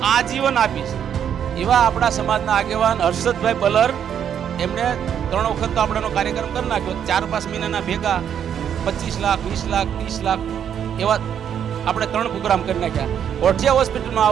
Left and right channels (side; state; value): left; quieter; 8.8 dB